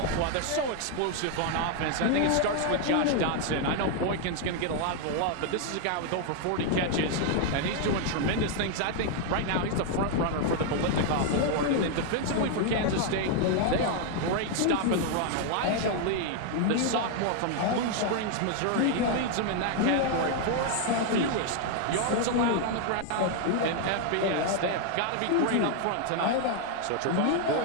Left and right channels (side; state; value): both; different; correlation 0.00